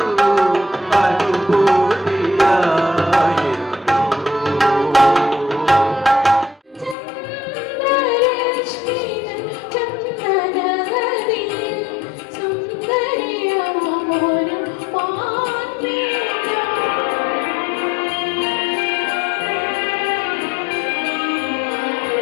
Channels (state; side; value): drops out; right; at 7.0 s